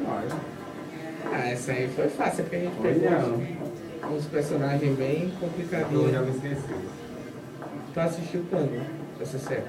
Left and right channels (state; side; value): identical; both; correlation 1.00